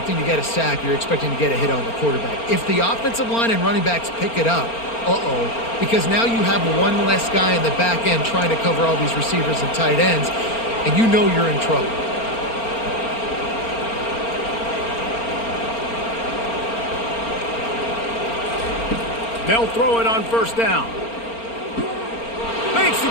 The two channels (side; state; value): right; late; 4.4 ms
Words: to get a sack. You're expecting to get a hit on the quarterback. If the offensive line and running backs pick it up, because now you have one less guy in the back end trying to cover all these receivers and tight ends, and you know you're in trouble. They'll throw it on first down. Makes the